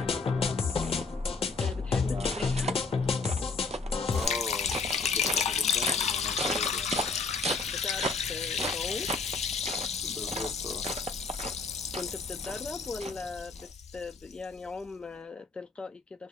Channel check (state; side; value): quieter; right; 4.3 dB